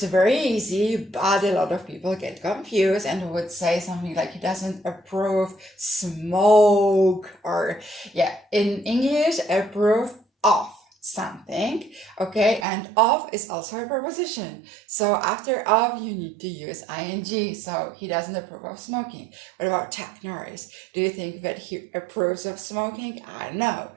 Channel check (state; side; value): drops out; left; at 12.7 s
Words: very easy, but a lot of people get confused and would say something like he doesn't approve smoke, or yeah, in English, approve of something. Okay, and of is also a preposition, so after of you need to use ing. So he doesn't approve of smoking. What about Chuck Norris? Do you think that he approves of smoking? No.